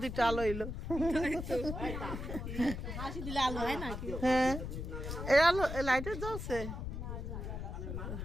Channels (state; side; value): noise; left; rumble, 6 dB below the sound